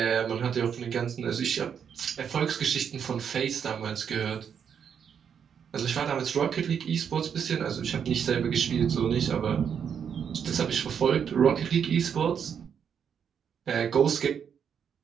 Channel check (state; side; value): quieter; left; 7.6 dB